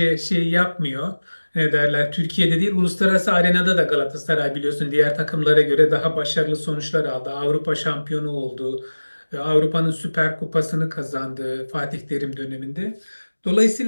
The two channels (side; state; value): both; inverted; correlation -1.00